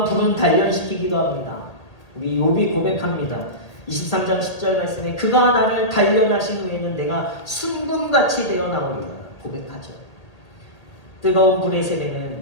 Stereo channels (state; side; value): late; right; 1.8 ms